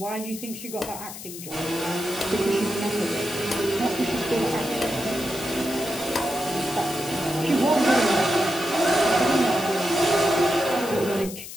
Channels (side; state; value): left; noise; hiss, 12 dB below the sound